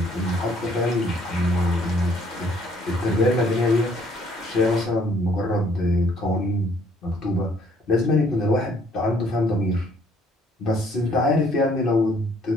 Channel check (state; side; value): normal; both; correlation 0.62